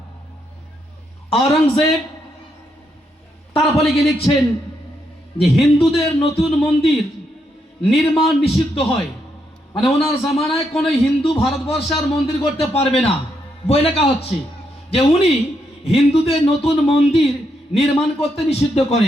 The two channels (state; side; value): normal; both; correlation 0.79